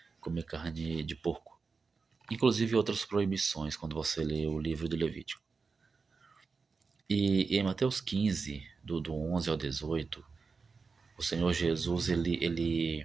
comer carne de porco. Inclusive outras proibições quando você lê o livro do Levítico. E em Mateus 15, do 11 ao 18, o Senhor Jesus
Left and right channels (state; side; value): quieter; left; 4.7 dB